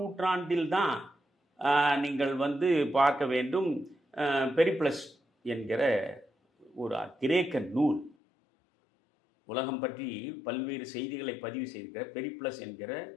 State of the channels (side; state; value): right; drops out; at 8.2 s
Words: தான் நீங்கள் பார்க்க வேண்டும். பெரிப்ளஸ் என்கிற ஒரு கிரேக்க நூல், உலகம் பற்றி பல்வேறு செய்திகளை பதிவு செய்திருக்கிற பெரிப்ளஸ் என்கிற